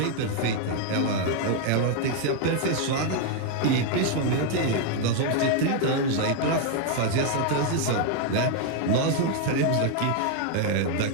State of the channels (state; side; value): different; both; correlation 0.00